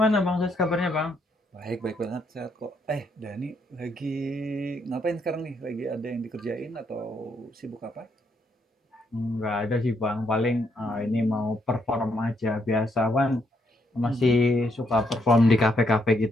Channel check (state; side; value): normal; both; correlation 0.74